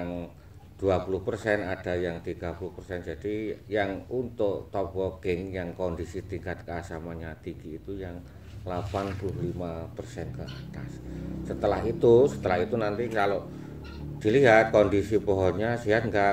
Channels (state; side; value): identical; both; correlation 1.00